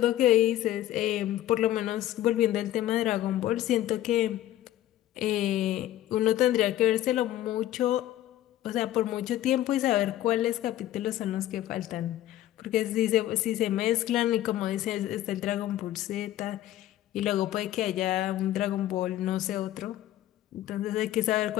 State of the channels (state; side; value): quieter; right; 13.5 dB